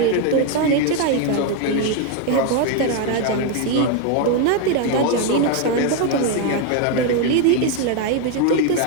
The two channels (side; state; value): both; different; correlation 0.01